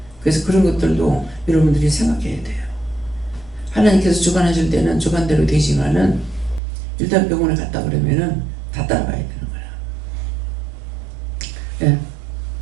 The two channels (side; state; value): left; drops out; at 6.6 s